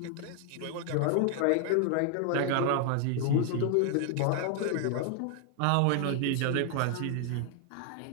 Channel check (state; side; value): different; both; correlation 0.00